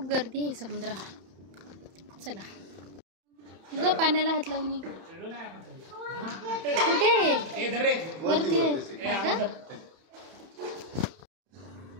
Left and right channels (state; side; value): late; left; 31 ms